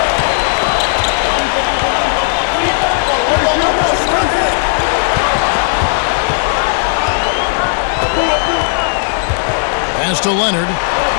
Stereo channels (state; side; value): silent; right; digital silence